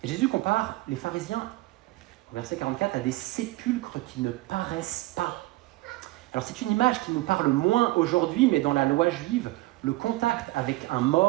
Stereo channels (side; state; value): left; quieter; 19.6 dB